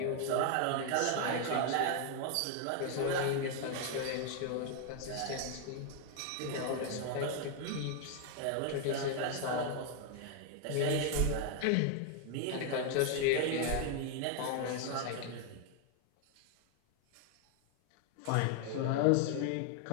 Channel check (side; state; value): both; different; correlation 0.00